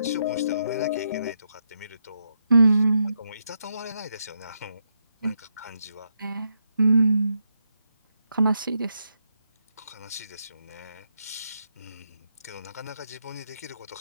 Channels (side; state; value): both; inverted; correlation -0.81